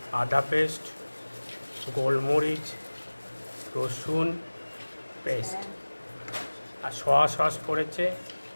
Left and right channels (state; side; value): inverted; both; correlation -1.00